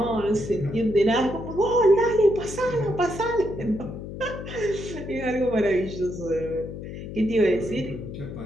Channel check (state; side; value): noise; left; hum, 9 dB below the sound